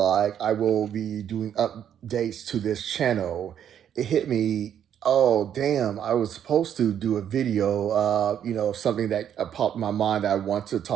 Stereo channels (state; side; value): quieter; left; 9.4 dB